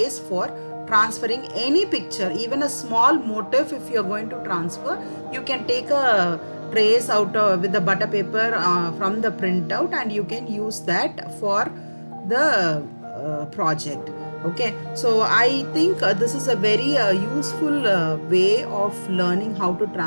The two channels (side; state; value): both; inverted; correlation -1.00